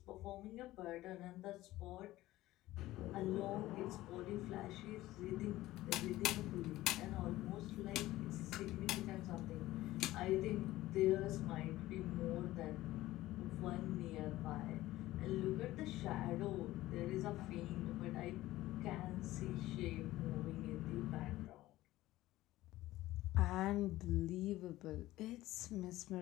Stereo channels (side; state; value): right; quieter; 16.5 dB